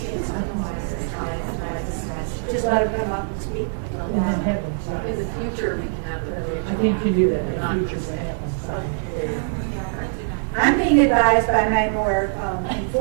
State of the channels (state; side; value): silent; left; digital silence